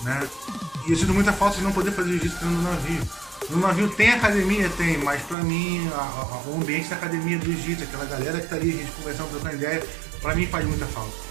né? E eu sinto muita falta de não poder fazer jiu-jitsu dentro do navio. No navio tem academia? Tem, mas pra mim o ambiente da academia do jiu-jitsu, aquela galera que tá ali, a gente conversando, trocando ideia, pra mim faz muita falta,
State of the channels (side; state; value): left; drops out; at 5.4 s